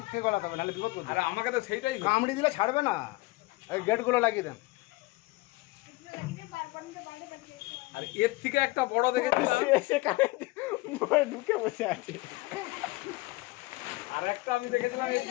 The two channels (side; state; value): right; quieter; 21.9 dB